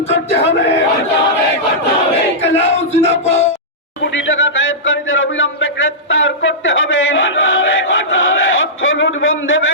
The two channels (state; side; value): normal; both; correlation -0.14